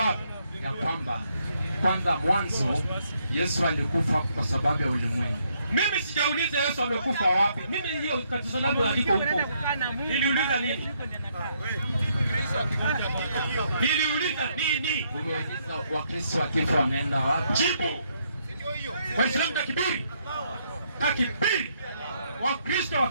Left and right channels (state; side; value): inverted; both; correlation -0.74